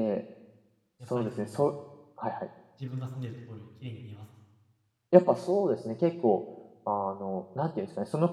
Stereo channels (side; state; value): both; identical; correlation 1.00